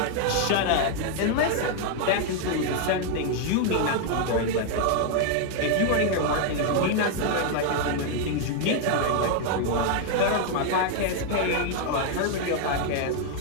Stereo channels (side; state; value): both; different; correlation 0.00